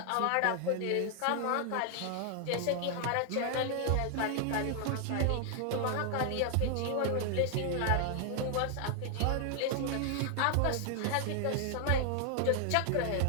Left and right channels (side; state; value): both; different; correlation 0.00